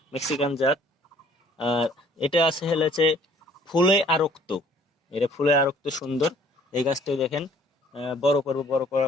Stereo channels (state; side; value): normal; both; correlation 0.57